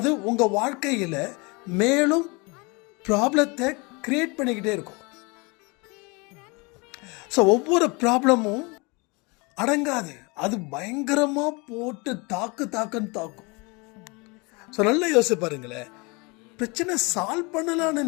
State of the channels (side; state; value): right; quieter; 28.4 dB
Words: உங்கள் வாழ்க்கையில் மேலும் ப்ராப்ளத்தை கிரியேட் பண்ணிக்கிட்டே இருக்கும். ஸோ ஒவ்வொரு ப்ராப்ளமும் அடங்காது, அது பயங்கரமாக போட்டு தாக்குன்னு தாக்கும். ஸோ நல்லா யோசிச்சு பாருங்களேன். பிரச்சனை சால்வ் பண்ணலான்னு